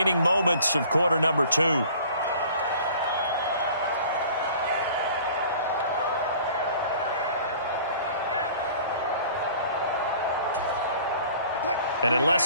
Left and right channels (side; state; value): both; inverted; correlation -0.49